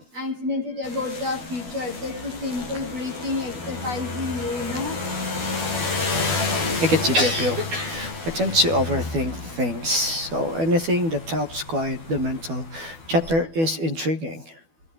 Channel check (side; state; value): left; late; 12 ms